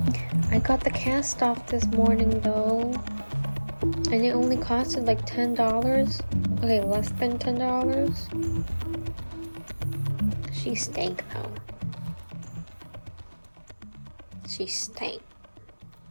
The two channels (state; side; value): inverted; both; correlation -1.00